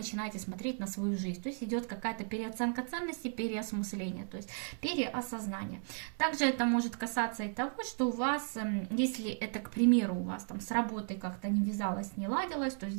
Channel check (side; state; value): left; silent; 54 dB below the other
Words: смотреть на свою жизнь. То есть идет какая-то переоценка ценностей, переосмысление, то есть переосознание. Также это может касаться и того, что у вас, если это, к примеру, у вас там с работой как-то не вязалось, не ладилось, то